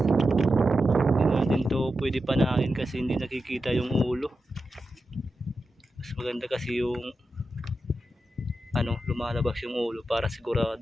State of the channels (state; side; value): normal; both; correlation 0.90